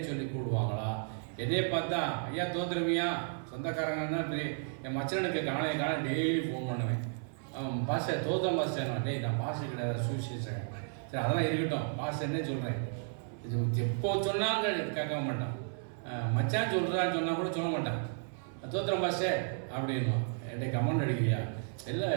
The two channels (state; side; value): silent; left; 56 dB below the other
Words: சொல்லி கூடுவாங்களா? என்னையே பார்த்தா ஐயா தோத்துருவியா சொந்தக்காரங்கன்னா என் மச்சனுக்கு காலையை டெய்லி ஃபோன் பண்ணுவேன். பாஸ்டர் தோத்தம் பாஸ்டர், டேய் நான் பாஸ்டர் கிடையாது சுவிசேஷன். சரி அதெல்லாம் இருக்கட்டும், பாஸ்டர்னே சொல்கிறேன். இது எப்போ சொன்னாங்க கேட்க மாட்டான். மச்சான் சொல்கிறான்னு சொன்னால் கூட சொல்ல மாட்டான். தோத்திரம் பாஸ்டர் அப்படின்னும். என்கிட்ட கமெண்ட் அடிக்கிறியா? இல்லை